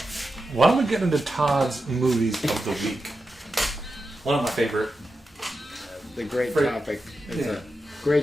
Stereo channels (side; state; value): both; normal; correlation 0.90